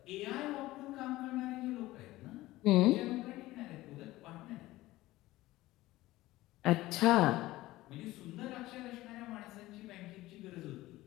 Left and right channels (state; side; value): quieter; right; 17.5 dB